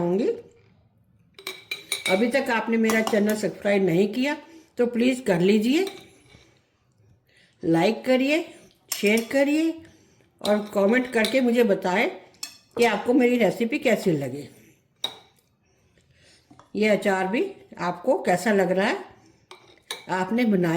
अभी तक आपने मेरा चैनल सब्सक्राइब नहीं किया तो प्लीज़ कर लीजिए, लाइक करिए, शेयर करिए और कमेंट करके मुझे बताएं कि आपको मेरी रेसिपी कैसी लगी। ये अचार भी आपको कैसा लग रहा है, आपने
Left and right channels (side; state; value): both; identical; correlation 1.00